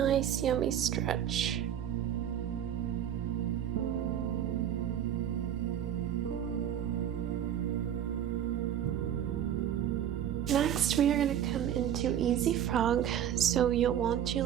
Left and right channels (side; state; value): left; quieter; 9.9 dB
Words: yummy stretch. Next, we are going to come into Easy Frog, so you'll want to